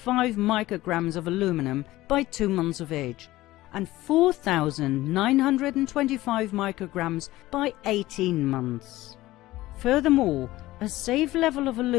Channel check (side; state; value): right; quieter; 17.1 dB